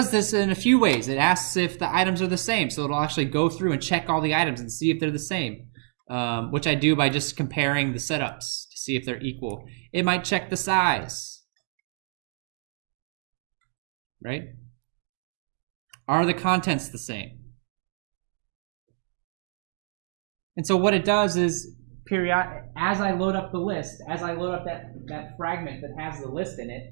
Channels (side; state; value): left; silent; 60 dB below the other